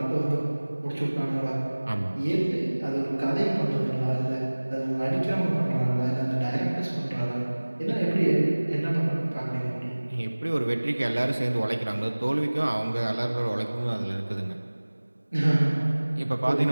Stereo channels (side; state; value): both; inverted; correlation -1.00